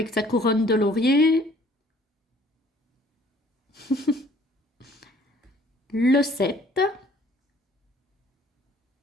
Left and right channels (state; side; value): normal; both; correlation 0.56